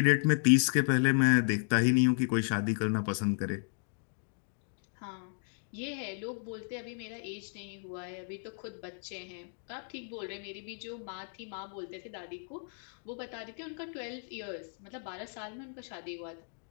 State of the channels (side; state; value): right; silent; 55 dB below the other